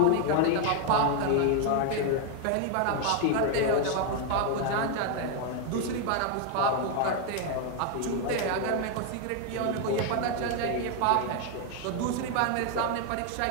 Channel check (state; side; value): different; both; correlation 0.01